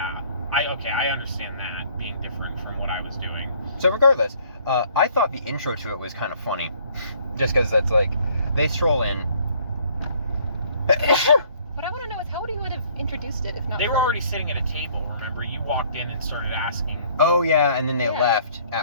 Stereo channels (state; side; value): inverted; both; correlation -0.60